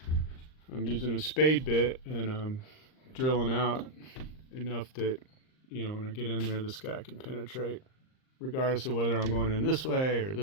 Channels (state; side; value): late; right; 39 ms